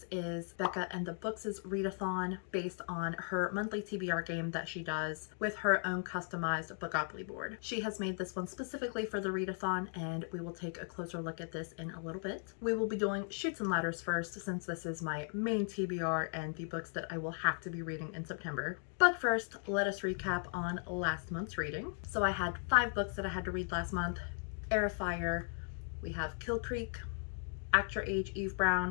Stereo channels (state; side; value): silent; right; 53 dB below the other